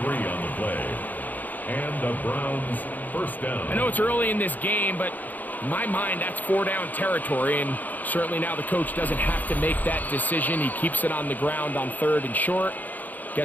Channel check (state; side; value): late; right; 0.083 ms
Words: 3 on the play. And the Browns first down. I know it's early in this game, but in my mind, that's 4-down territory, and certainly now the coach doesn't have to make that decision. He keeps it on the ground on 3rd and short,